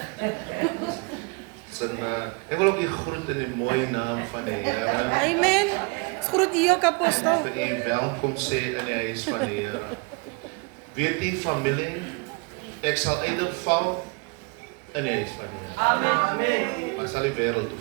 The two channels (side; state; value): left; quieter; 30.5 dB